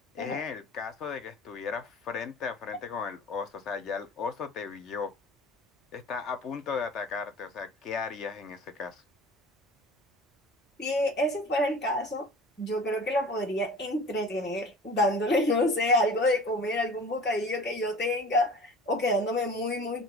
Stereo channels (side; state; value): both; normal; correlation 0.41